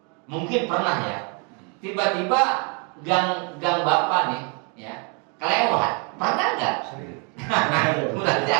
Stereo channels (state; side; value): quieter; left; 35.3 dB